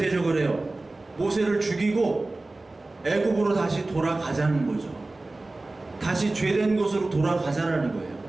해요? 모세를 죽이고 애굽으로 다시 돌아가자는 거죠. 다시 죄된 곳으로 돌아가자라는 거예요.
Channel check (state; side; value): quieter; left; 3.0 dB